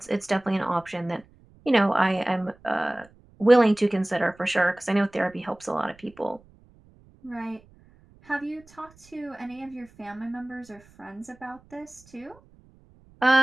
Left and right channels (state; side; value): noise; right; rumble, 28 dB below the sound